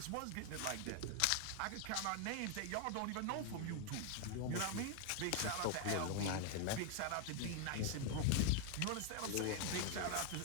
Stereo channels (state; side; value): different; both; correlation 0.00